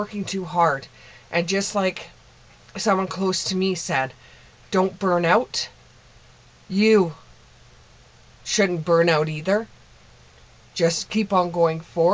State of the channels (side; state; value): both; identical; correlation 1.00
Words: too hard. And just like someone close to me said, don't burn out. You shouldn't burn out either. Just keep on going